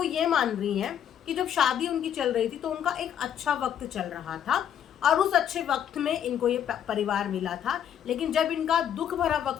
ये मान रही हैं कि जब शादी उनकी चल रही थी तो उनका एक अच्छा वक्त चल रहा था और उस अच्छे वक्त में इनको ये परिवार मिला था, लेकिन जब इनका दुख भरा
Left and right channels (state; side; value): quieter; right; 9.5 dB